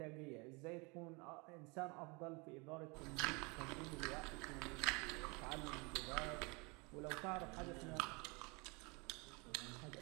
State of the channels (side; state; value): left; quieter; 29.2 dB